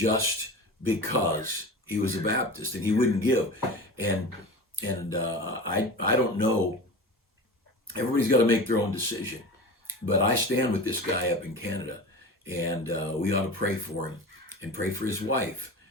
because he was a Baptist and he wouldn't give. And I don't know, everybody's got to make their own decision, but I stand with this guy up in Canada, and we ought to pray for him and pray for his wife.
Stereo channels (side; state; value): both; normal; correlation 0.32